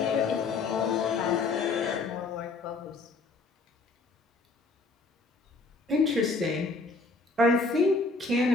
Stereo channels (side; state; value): right; quieter; 3.7 dB